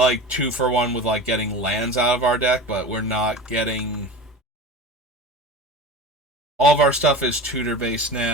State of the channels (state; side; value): normal; both; correlation 0.31